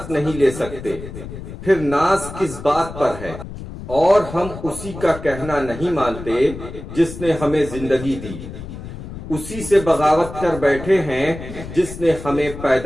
نہیں لے سکتے، پھر ناز کس بات پر ہے؟ اور ہم اسی کا کہنا نہیں مانتے جس نے ہمیں زندگی دی، اسی سے بغاوت کر بیٹھے ہیں جس نے ہمیں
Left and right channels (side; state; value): left; noise; rumble, 11 dB below the sound